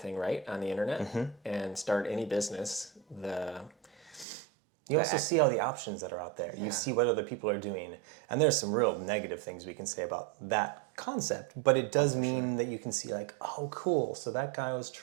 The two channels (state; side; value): drops out; left; at 4.2 s